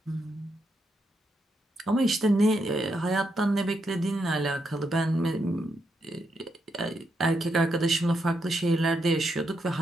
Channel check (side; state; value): both; normal; correlation 0.81